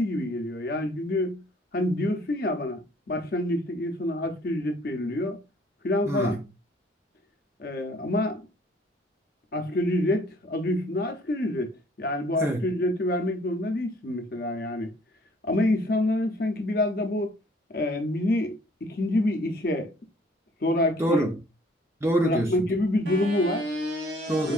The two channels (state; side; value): normal; both; correlation 0.58